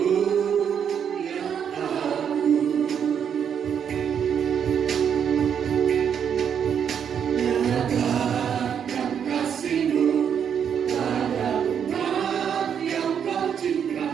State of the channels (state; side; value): quieter; left; 8.0 dB